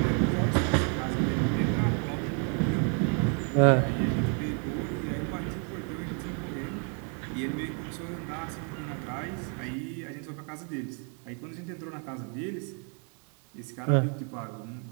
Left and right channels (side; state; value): left; quieter; 39.7 dB